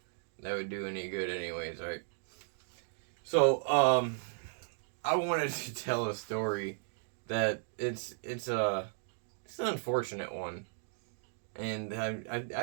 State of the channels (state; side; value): silent; left; digital silence